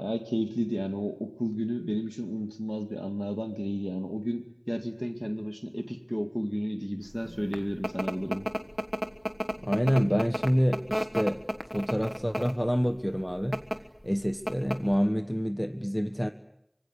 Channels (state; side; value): identical; both; correlation 1.00